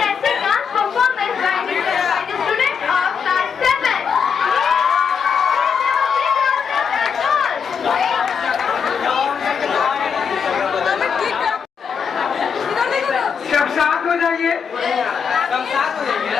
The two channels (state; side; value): quieter; right; 6.6 dB